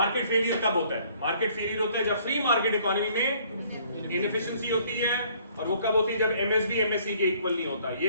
failure कब होता है? मार्केट फेलियर होता है जब फ्री मार्केट इकोनॉमी में इनएफिशिएंसी होती है, और वो कब होती है? जब एमएसबी एमएससी के इक्वल नहीं होता.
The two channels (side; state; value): both; inverted; correlation -0.60